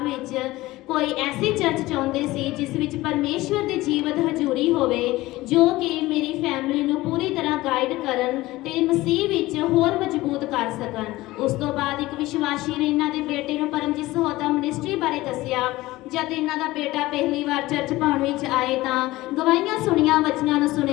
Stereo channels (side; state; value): right; quieter; 18.4 dB